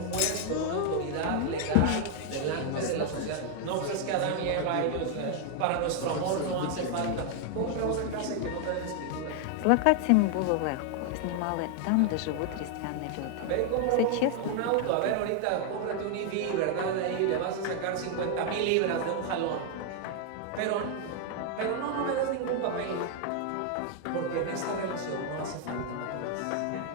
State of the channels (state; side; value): different; both; correlation 0.00